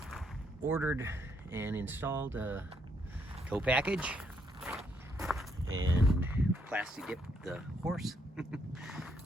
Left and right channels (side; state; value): both; normal; correlation 0.74